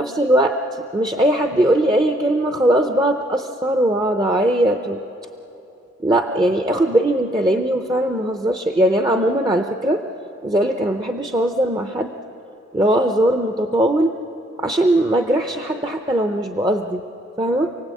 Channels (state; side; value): normal; both; correlation 0.67